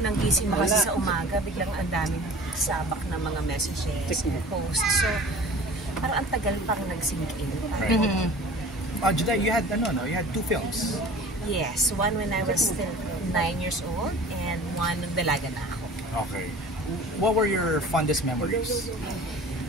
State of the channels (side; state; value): both; normal; correlation 0.42